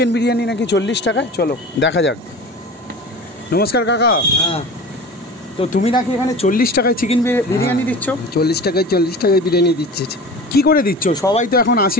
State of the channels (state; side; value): normal; both; correlation 0.36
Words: বিরিয়ানি নাকি 40 টাকায়? চলো দেখা যাক। নমস্কার কাকা। হ্যাঁ, তো তুমি নাকি এখানে 40 টাকায় চিকেন বিরিয়ানি দিচ্ছ? 40 টাকায় বিরিয়ানি দিচ্ছে। কি করে দিচ্ছ? সবাই তো এখন